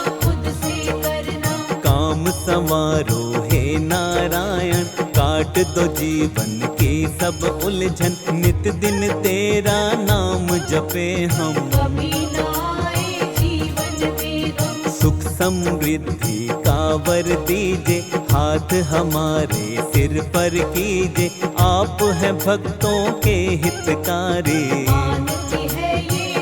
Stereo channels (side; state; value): both; identical; correlation 1.00